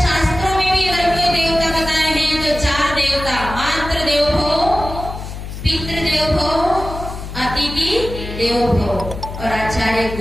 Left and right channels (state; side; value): noise; left; hum, 9 dB below the sound